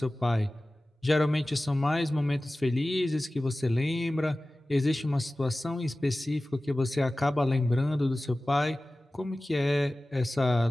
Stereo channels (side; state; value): both; normal; correlation 0.97